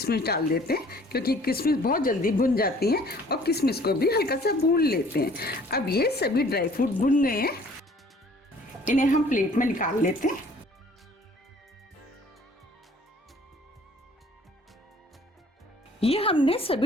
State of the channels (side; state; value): both; normal; correlation 0.54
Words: डाल देते हैं क्योंकि किशमिश बहुत जल्दी भुन जाती हैं और किशमिश को भी हल्का सा भून लेते हैं। अब ये सभी ड्राई फ्रूट भुन गए हैं, इन्हें हम प्लेट में निकाल लेते हैं। ये हमने